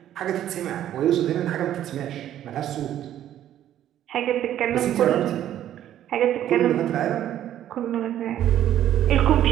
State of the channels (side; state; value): left; quieter; 11.6 dB